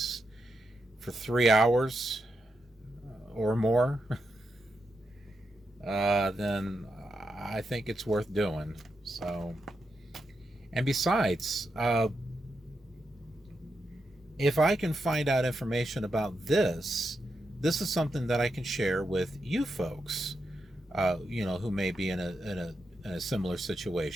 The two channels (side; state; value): both; normal; correlation 0.85